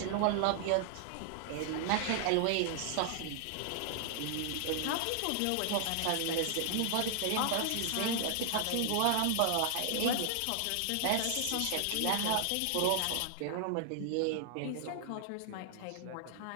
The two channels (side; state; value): both; different; correlation -0.01